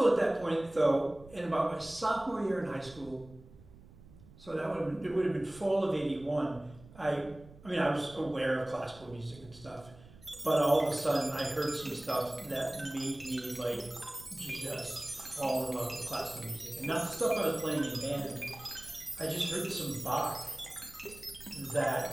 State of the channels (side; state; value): right; noise; rumble, 21 dB below the sound